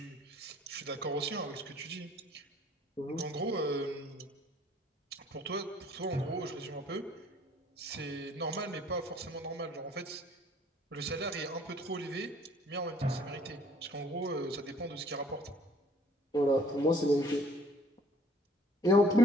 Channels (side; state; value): both; normal; correlation 0.57